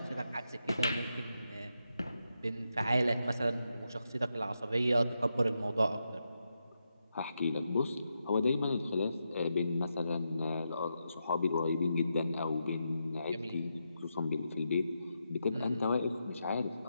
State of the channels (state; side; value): inverted; both; correlation -0.85